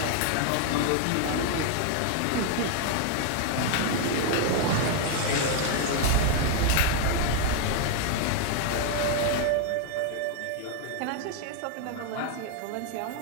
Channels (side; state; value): both; different; correlation 0.00